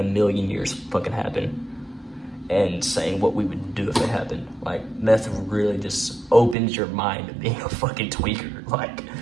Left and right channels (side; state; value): left; drops out; at 6.6 s